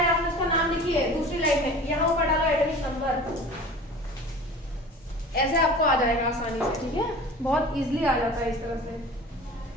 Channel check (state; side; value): normal; both; correlation 0.40